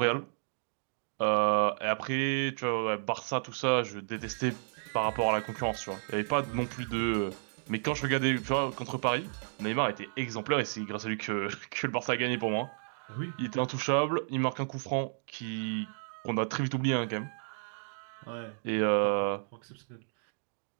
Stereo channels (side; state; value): left; silent; digital silence